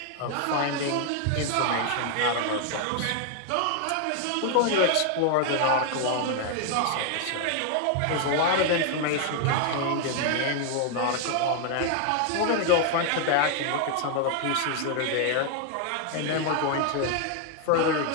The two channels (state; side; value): different; both; correlation 0.00